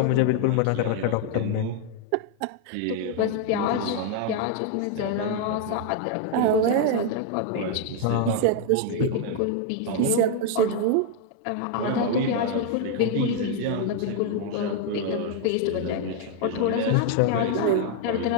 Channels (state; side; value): different; both; correlation 0.00